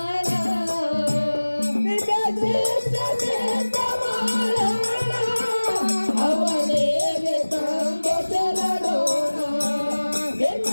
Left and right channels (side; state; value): both; inverted; correlation -1.00